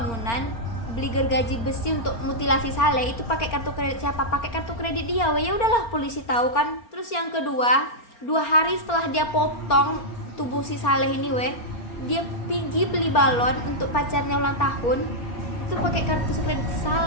beli gergaji besi untuk mutilasi Saleh, itu pakai kartu kredit siapa? Pakai kartu kredit dia weh. Ya udahlah polisi tahu kan. Terus yang kedua, 2 hari setelah dia potong tubuh si Saleh ini weh, dia pergi beli balon untuk pacarnya ulang tahun, itu pakai kartu kredit si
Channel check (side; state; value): right; late; 4.4 ms